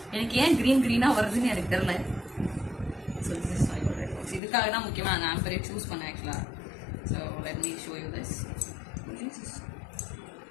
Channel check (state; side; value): drops out; right; at 4.4 s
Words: எனக்கு ஏன் க்ரீனாக வருதுன்னு எனக்கு தெரியல. So this is my jewellery box. இதுக்காக தான் முக்கியமாக அந்த ஆம்பரே சூஸ் பண்ணேன் ஆக்சுவலாக. So let me show you this.